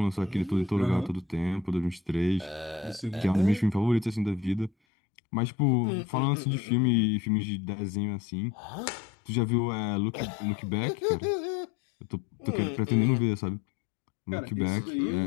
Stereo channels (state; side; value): drops out; right; at 4.7 s